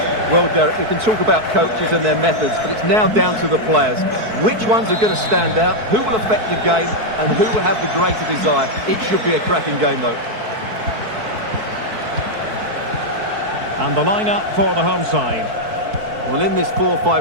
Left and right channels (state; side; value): late; left; 4.6 ms